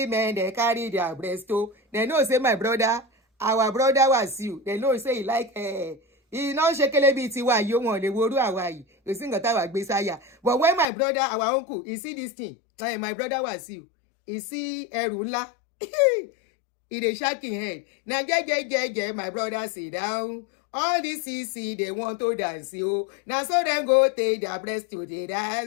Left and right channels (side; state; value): right; drops out; at 10.9 s